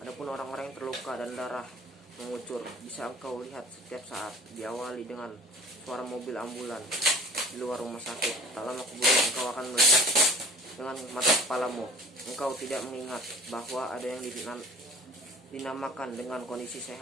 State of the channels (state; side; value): normal; both; correlation 0.48